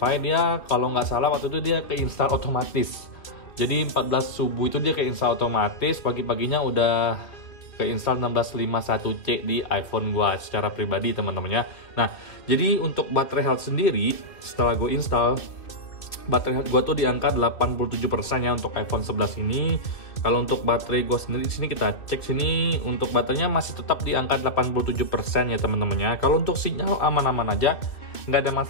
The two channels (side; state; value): right; late; 2.6 ms